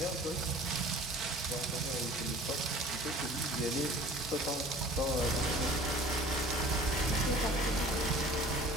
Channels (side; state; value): both; normal; correlation 0.46